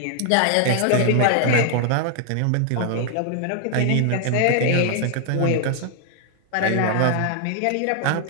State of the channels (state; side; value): different; both; correlation 0.00